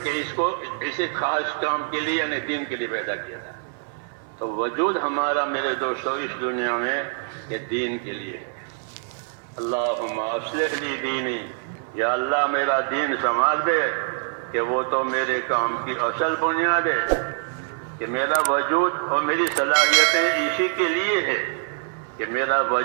کہ اس کو اسی خاص کام کے لیے یعنی دین کے لیے پیدا کیا تھا. تو وجود ہمارا میرے دوستو اس دنیا میں یہ دین کے لیے ہے. اللہم اصلح لی دینی، یا اللہ میرا دین سنوار دے کہ وہ تو میرے کام کی اصل بنیاد ہے، کہ میرا وجود اور میری صلاحیتیں اسی کے لیے ہے، کہ میرا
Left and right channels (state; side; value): silent; left; digital silence